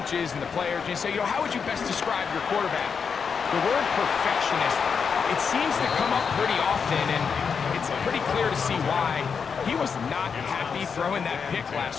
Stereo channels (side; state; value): right; quieter; 6.1 dB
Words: and the players, you say, how would you best describe your quarterback? The word perfectionist, it seems to come up pretty often, and it's pretty clear to see why. He was not happy throwing that pick